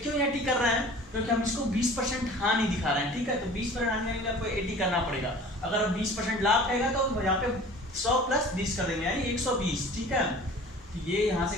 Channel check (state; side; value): normal; both; correlation 0.44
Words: 80 कर रहे हैं, क्योंकि हम इसको 20% हानि दिखा रहे हैं, ठीक है। तो 20% हानि के लिए आपको 80 करना पड़ेगा। अगर 20% लाभ रहेगा तो यहाँ पे 100 + 20 कर देंगे, यानी 120, ठीक है। तो ये यहाँ